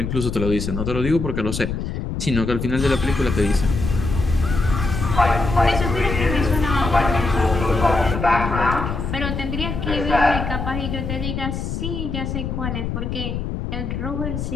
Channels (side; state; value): left; noise; rumble, 4 dB below the sound